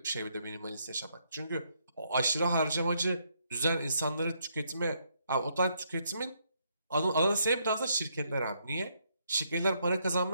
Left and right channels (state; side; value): inverted; both; correlation -0.74